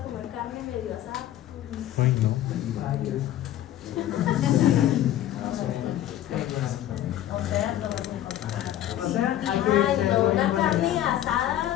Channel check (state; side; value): quieter; right; 12.5 dB